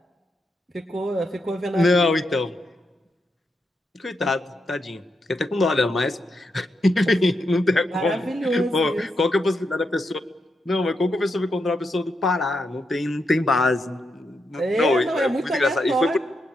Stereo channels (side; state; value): both; normal; correlation 0.83